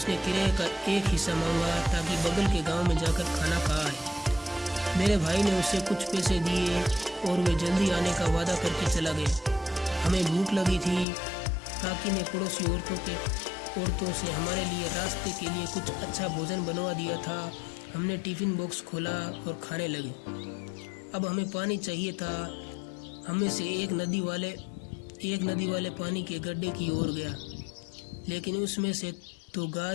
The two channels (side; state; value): right; drops out; at 11.1 s